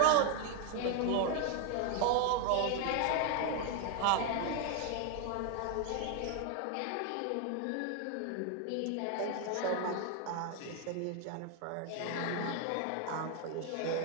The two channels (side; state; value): both; different; correlation 0.01